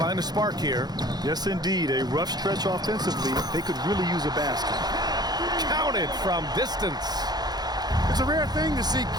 a spark here. Yes, indeed. A rough stretch offensively. They could really use a basket. Counted from distance. It's a rare thing to see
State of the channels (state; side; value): late; left; 0.19 ms